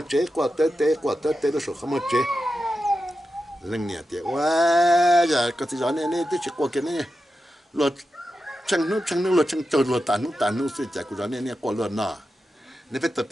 chế qua tê nó sổ không mà chế lần nè thì quá giờ có thể nói này tôi chỉ qua cái này luật chẳng nó luật chẳng trâu luật tàn nó sẽ chạy của nó này qua luật nọ nên phải tập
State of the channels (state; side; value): normal; both; correlation 0.90